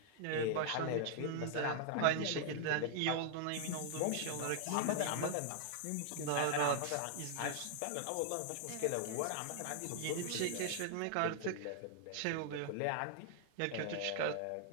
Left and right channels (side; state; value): both; different; correlation 0.00